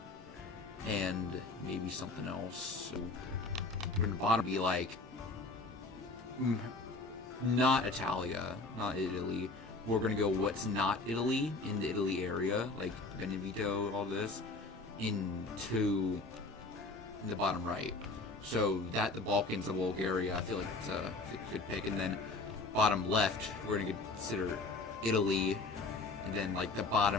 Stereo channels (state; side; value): quieter; right; 3.4 dB